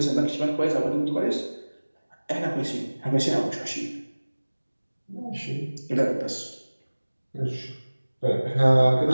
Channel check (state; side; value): inverted; both; correlation -1.00